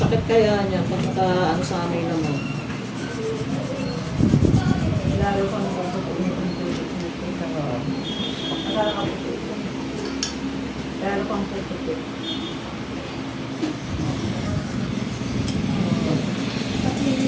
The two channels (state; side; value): identical; both; correlation 1.00